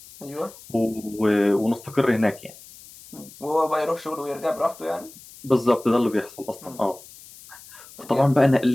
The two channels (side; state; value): left; noise; hiss, 20 dB below the sound